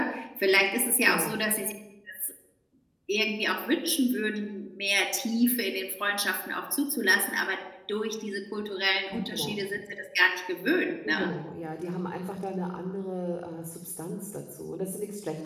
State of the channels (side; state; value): both; identical; correlation 1.00